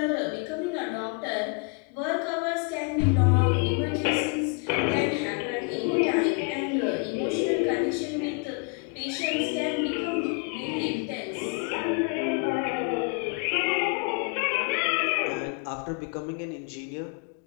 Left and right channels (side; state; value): right; quieter; 33.8 dB